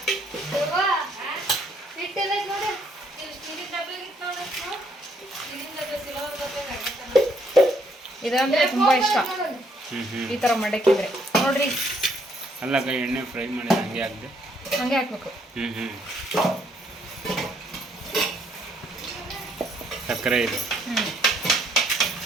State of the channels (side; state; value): both; normal; correlation 0.69